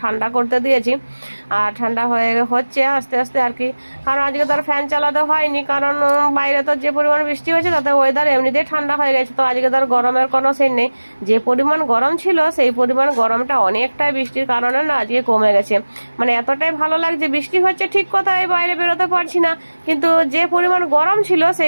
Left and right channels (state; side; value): inverted; both; correlation -1.00